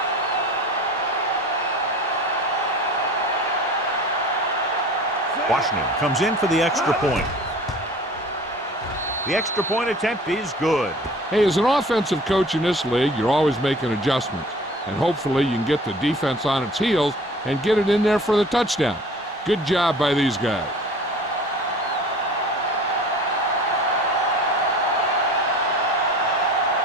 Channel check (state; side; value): normal; both; correlation 0.44